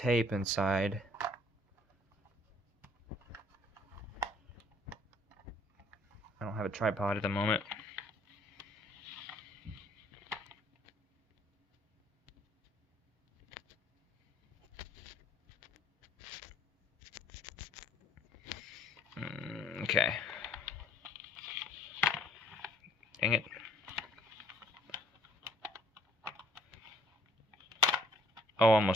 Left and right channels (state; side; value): normal; both; correlation 0.60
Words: inside. I don't have a tripod at the moment. Okay. Dang it. Oh,